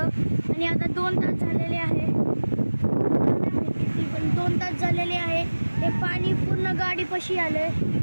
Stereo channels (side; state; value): both; inverted; correlation -1.00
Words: आणि आता 2 तास झालेले आहे, पण 2 तास झालेले आहे, हे पाणी पूर्ण गाडीपाशी आलं